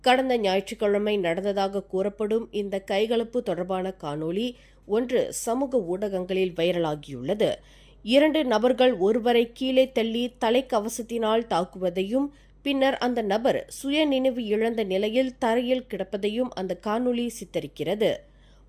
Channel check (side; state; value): both; identical; correlation 1.00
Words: கடந்த ஞாயிற்றுக்கிழமை நடந்ததாக கூறப்படும் இந்த கைகலப்பு தொடர்பான காணொலி ஒன்று சமூக ஊடகங்களில் வைரலாகியுள்ளது. 2 நபர்கள் ஒருவரை கீழே தள்ளி தலைக்கவசத்தினால் தாக்குவதையும் பின்னர் அந்த நபர் சுயநினைவு இழந்த நிலையில் தரையில் கிடப்பதையும் அந்த காணொலி சித்தரிக்கிறது.